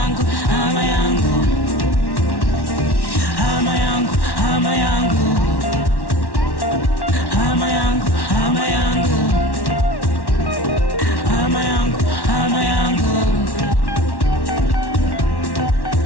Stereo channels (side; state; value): right; late; 1.1 ms